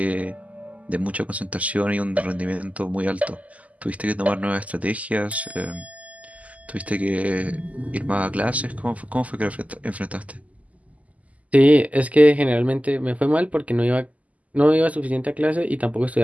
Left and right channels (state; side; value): late; left; 0.072 ms